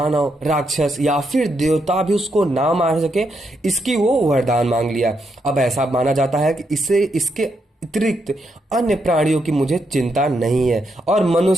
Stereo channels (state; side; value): normal; both; correlation 0.80